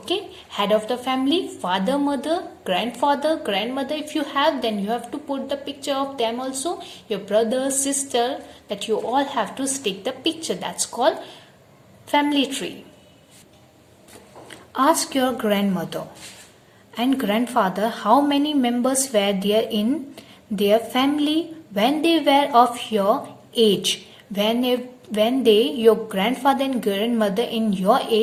Head of the family, father, mother, grandfather, grandmother. If you have, then you have to put the picture of them also. Your brother, sister, that you all have to stick the picture. That's called family tree. Ask your grandmother and grandfather how many members were there in their family when they were of your age. When your grandfather and grandmother in your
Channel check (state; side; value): identical; both; correlation 1.00